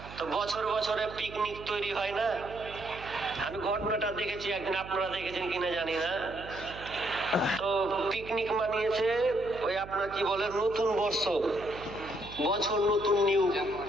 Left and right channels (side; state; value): right; noise; hum, 15 dB below the sound